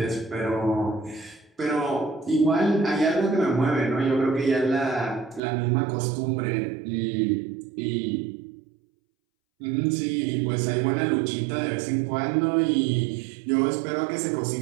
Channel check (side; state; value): left; drops out; at 5.4 s